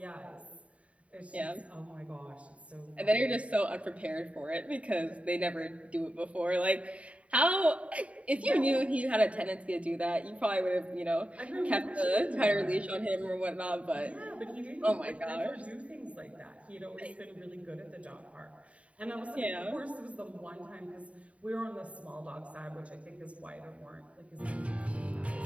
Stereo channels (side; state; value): left; late; 0.065 ms